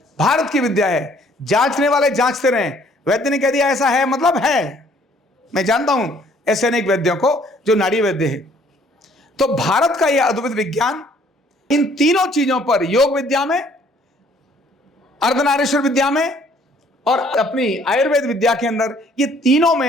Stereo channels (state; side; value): normal; both; correlation 0.60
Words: भारत की विद्या है। जांचने वाले जांचते रहे, वैद्य ने कह दिया ऐसा है मतलब है। मैं जानता हूं ऐसे अनेक वैद्यों को जो नाड़ी वैद्य है। तो भारत का यह अद्भुत विज्ञान इन तीनों चीजों पर, योग विद्या में, अर्धनारीश्वर विद्या में और अपनी आयुर्वेद विद्या के अंदर, ये तीनों